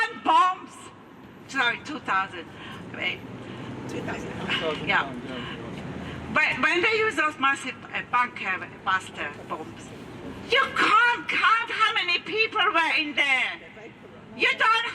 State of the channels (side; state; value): both; identical; correlation 1.00